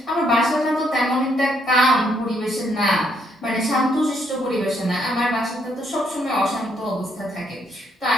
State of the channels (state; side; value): normal; both; correlation 0.72